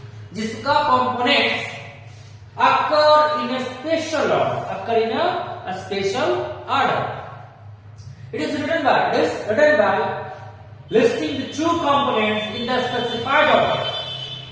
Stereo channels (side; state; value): both; identical; correlation 1.00